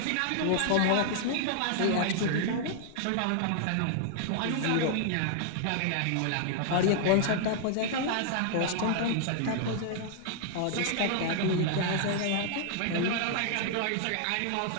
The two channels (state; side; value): different; both; correlation -0.01